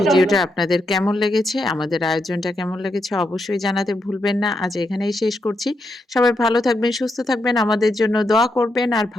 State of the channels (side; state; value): both; normal; correlation 0.82